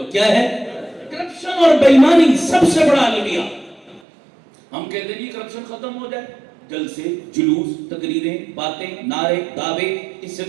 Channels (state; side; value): drops out; left; at 4.0 s